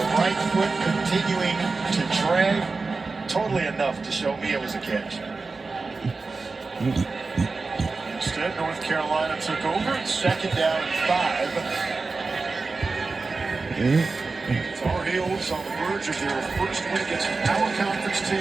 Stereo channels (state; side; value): quieter; left; 4.0 dB